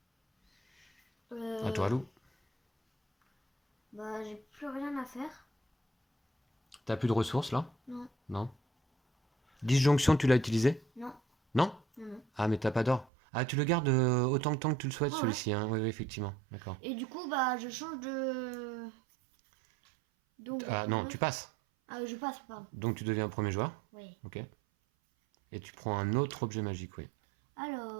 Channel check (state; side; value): drops out; left; at 13.1 s